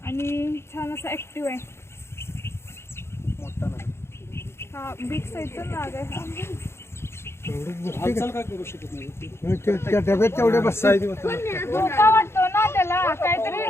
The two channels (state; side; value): late; right; 0.12 ms